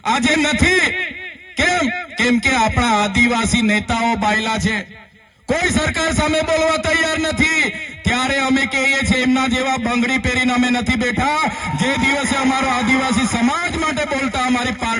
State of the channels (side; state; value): both; identical; correlation 1.00